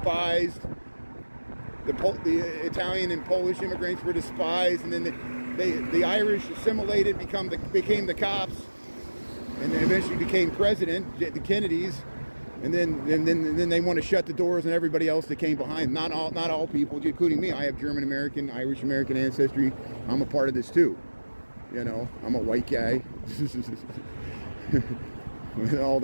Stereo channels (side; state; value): both; inverted; correlation -1.00